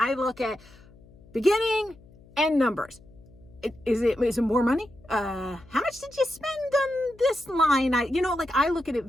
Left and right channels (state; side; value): noise; left; hum, 25 dB below the sound